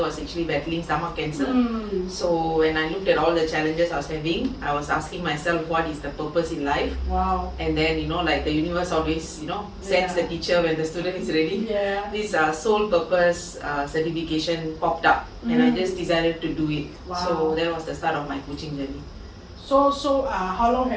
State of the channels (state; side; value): identical; both; correlation 1.00